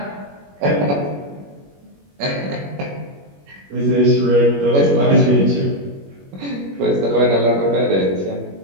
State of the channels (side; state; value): left; late; 21 ms